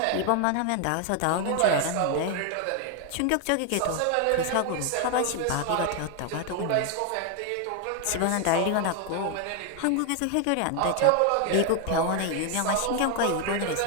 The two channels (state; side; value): different; both; correlation 0.01